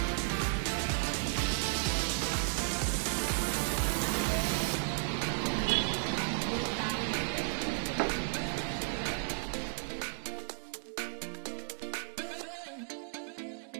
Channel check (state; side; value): silent; left; 55 dB below the other